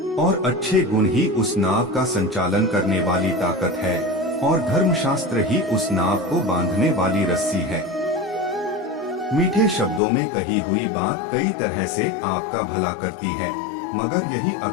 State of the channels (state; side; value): drops out; right; at 10.0 s